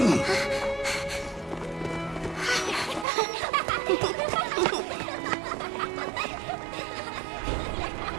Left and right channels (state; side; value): drops out; left; at 3.1 s